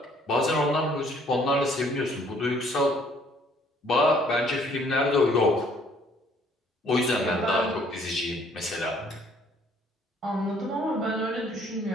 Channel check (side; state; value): both; normal; correlation 0.61